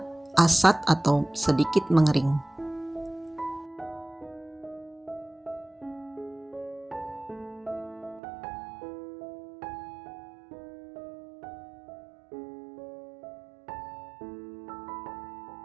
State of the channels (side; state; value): left; drops out; at 8.2 s